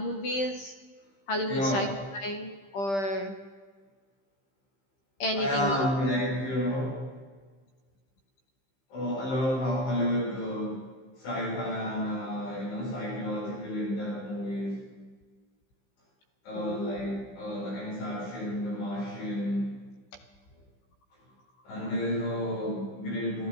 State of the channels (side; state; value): right; late; 15 ms